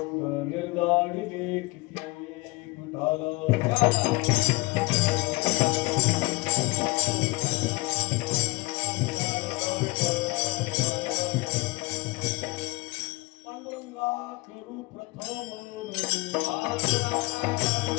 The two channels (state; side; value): quieter; right; 23.5 dB